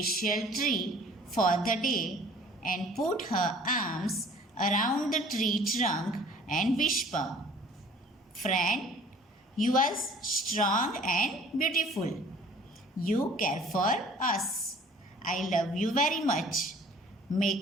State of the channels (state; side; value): normal; both; correlation 0.51